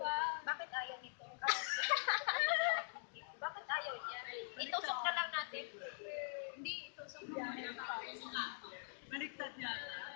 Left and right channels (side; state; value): right; silent; digital silence